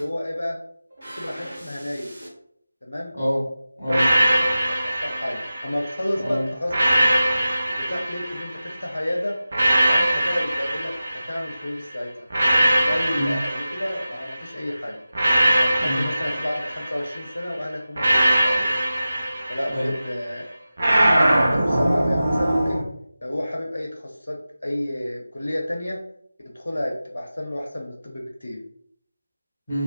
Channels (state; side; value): inverted; both; correlation -0.95